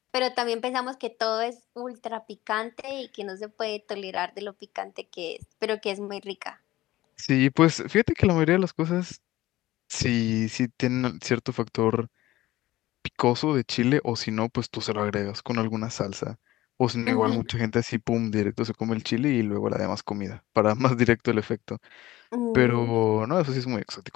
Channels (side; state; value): right; quieter; 16.6 dB